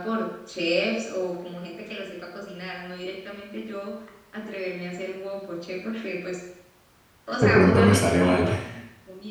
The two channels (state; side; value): identical; both; correlation 1.00